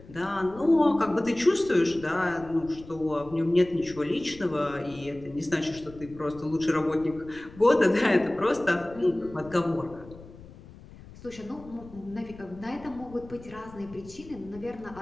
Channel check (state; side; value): noise; left; rumble, 19 dB below the sound